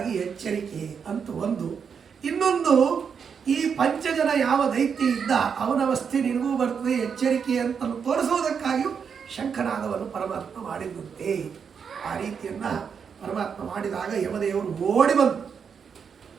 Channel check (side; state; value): left; quieter; 6.7 dB